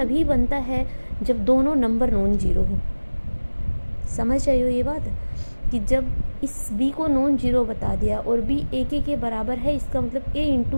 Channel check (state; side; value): inverted; both; correlation -1.00